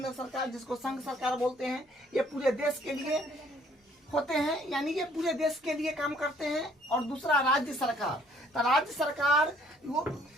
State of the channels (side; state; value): both; normal; correlation 0.62